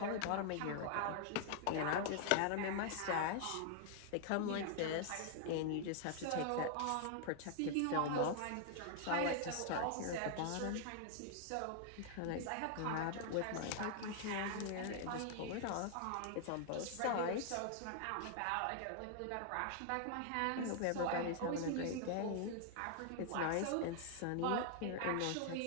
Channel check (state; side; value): different; both; correlation 0.00